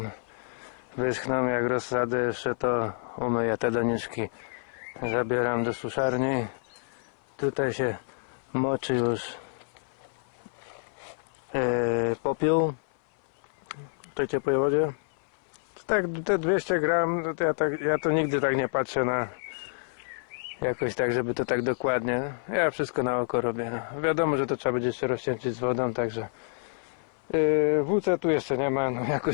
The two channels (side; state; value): right; silent; 57 dB below the other